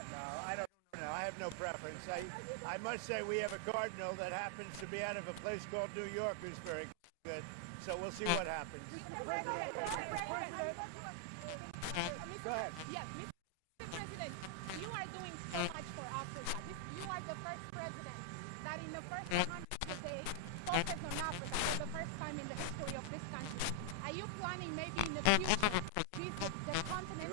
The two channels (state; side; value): different; both; correlation -0.01